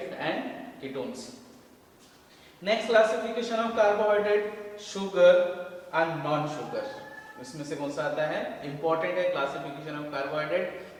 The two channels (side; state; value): both; identical; correlation 1.00